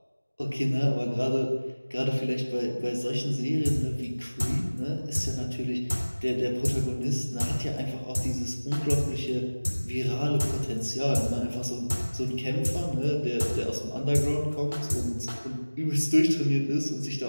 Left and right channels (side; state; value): both; inverted; correlation -1.00